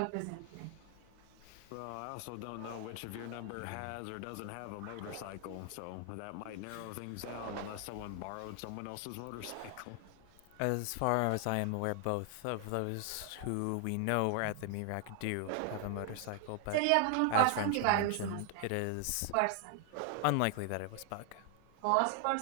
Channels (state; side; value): different; both; correlation 0.00